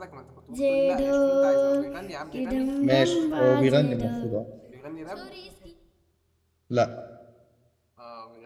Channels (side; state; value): both; identical; correlation 1.00